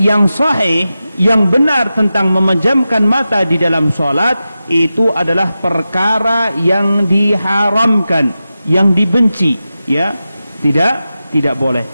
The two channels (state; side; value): inverted; both; correlation -0.92